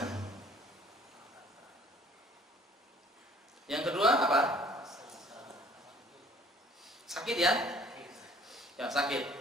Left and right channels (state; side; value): normal; both; correlation 0.56